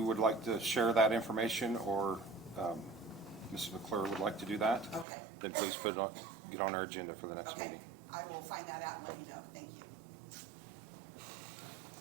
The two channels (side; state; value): left; drops out; at 5.1 s